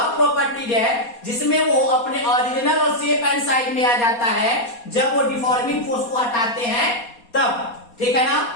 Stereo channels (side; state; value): right; late; 4.2 ms